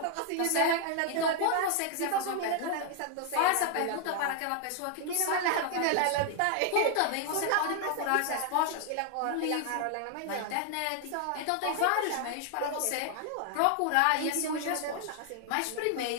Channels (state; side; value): different; both; correlation 0.00